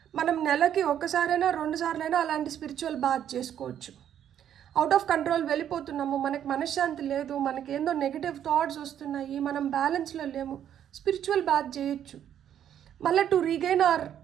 మనం నెలకి ఒక్కసారైనా 2 సార్లైనా అలాంటి స్పిరిచువల్ బాత్ చేసుకోవచ్చు. అవుట్ ఆఫ్ కంట్రోల్ వెళ్ళిపోతున్నాము, మనకి మనశ్శాంతి లేదు, మనకేందో నెగిటివ్ థాట్స్ వస్తున్నాయి, మనం బ్యాలెన్స్లో లేము, స్పిరిచువల్ బాత్ చేయొచ్చు. మళ్ళీ to regain hour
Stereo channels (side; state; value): left; quieter; 10.0 dB